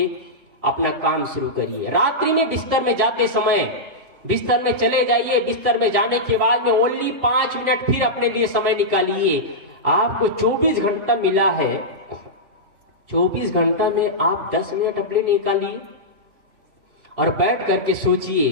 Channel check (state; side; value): late; left; 2.7 ms